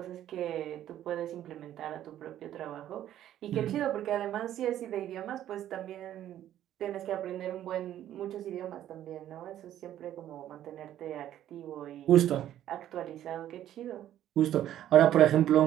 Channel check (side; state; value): left; quieter; 11.9 dB